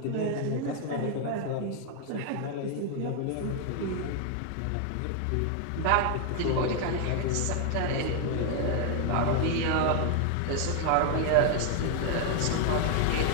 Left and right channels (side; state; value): both; different; correlation 0.00